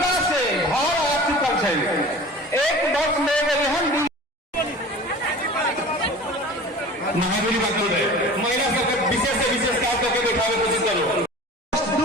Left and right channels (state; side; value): normal; both; correlation 0.39